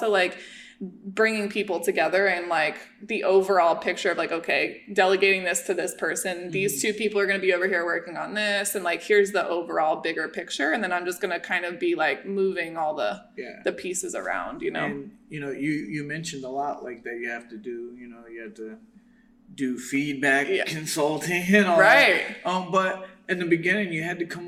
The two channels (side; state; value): both; identical; correlation 1.00